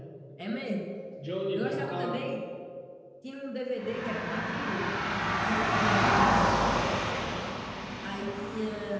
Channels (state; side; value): identical; both; correlation 1.00